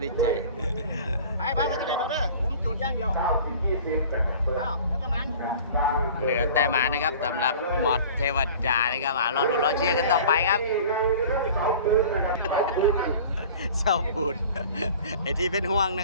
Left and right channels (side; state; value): both; inverted; correlation -0.43